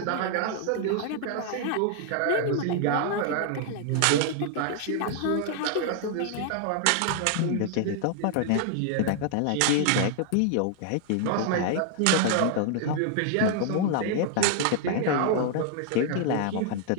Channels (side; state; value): both; different; correlation 0.00